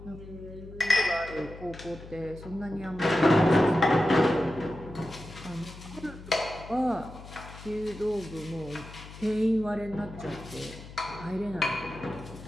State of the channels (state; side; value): noise; left; hum, 15 dB below the sound